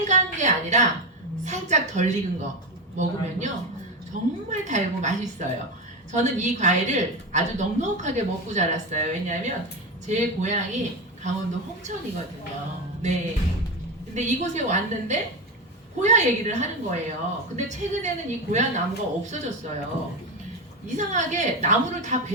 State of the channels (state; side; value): normal; both; correlation 0.16